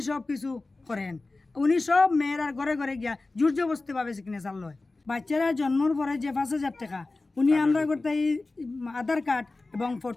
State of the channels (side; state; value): right; quieter; 3.3 dB